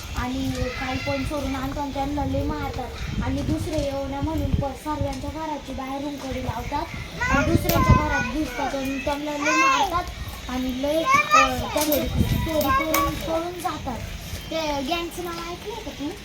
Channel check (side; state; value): both; identical; correlation 1.00